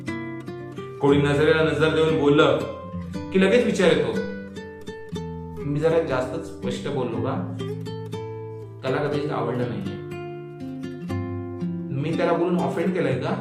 कोणी नजरेला नजर देऊन बोललं की लगेच विचार येतो, मी जरा जास्तच स्पष्ट बोललो का? त्याला कधीच आवडलं नाहीये. मी त्याला बोलून ऑफेंड केलंय का?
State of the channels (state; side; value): identical; both; correlation 1.00